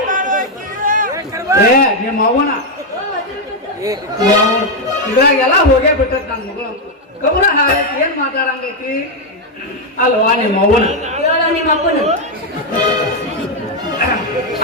ಏ ನಿಮ್ಮ ಅವ್ವನ ಇದ್ರಾಗೆಲ್ಲ ಹೋಗೇ ಬಿಟ್ಟತ್ ನನ್ನ ಮಗಳು ಗಮನ ಹಾಗೈತಿ ಏನ್ ಮಾತಾಡಂಗೈತಿ ಅಲ್ವಾ ನಿಮ್ಮ ಅವ್ವನ ನಿಮ್ಮ ಅಪ್ಪನ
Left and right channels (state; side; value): normal; both; correlation 0.02